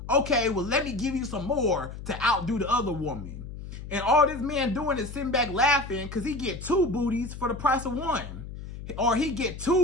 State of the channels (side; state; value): left; noise; hum, 11 dB below the sound